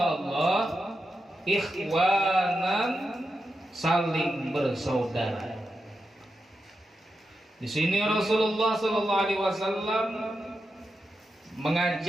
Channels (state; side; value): normal; both; correlation 0.88